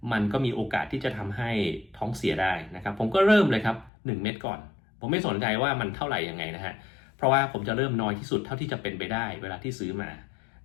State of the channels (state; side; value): drops out; right; at 3.9 s